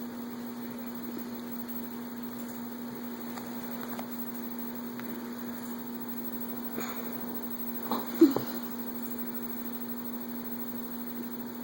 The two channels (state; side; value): identical; both; correlation 1.00